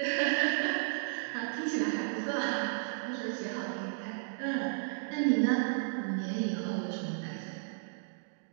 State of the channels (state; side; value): silent; left; digital silence